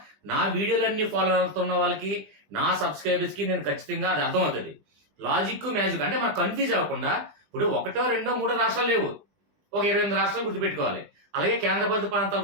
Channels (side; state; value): left; late; 20 ms